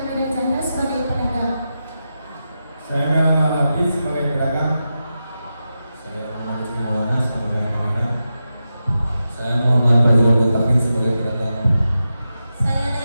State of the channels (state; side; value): inverted; both; correlation -0.90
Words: Medanjana sebagai pedagang. Saya Muhammad Hafiz sebagai pedagang. Saya Muhammad Maulana sebagai pedagang. Saya Muhammad Fadlul Taufik sebagai pedagang. Saya